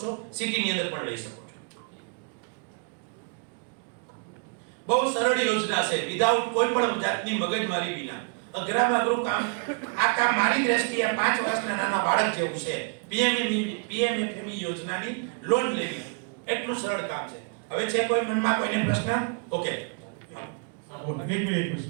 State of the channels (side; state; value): left; quieter; 39.6 dB